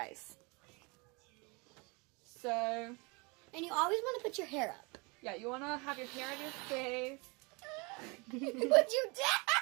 So, and you always want to put your hair up. Yeah, you want to have your hair on your face. What'd you do?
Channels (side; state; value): left; quieter; 29.0 dB